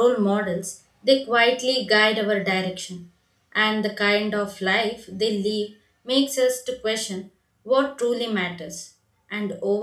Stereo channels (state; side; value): identical; both; correlation 1.00